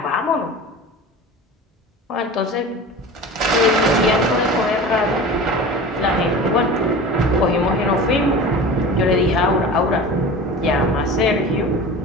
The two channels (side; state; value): both; normal; correlation 0.35